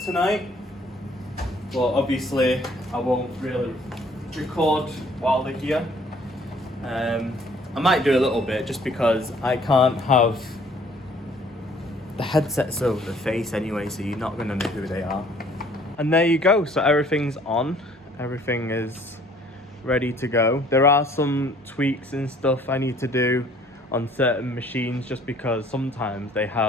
tonight, but obviously I won't really record while they're here. I might do a little bit just because I can't have the headsets over the face anyway, so you're not going to know who they are. And there you go, so everything's on, everything is ready to go. There are some tweaks and stuff I need to do on certain machines just because sometimes they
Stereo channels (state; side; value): normal; both; correlation 0.58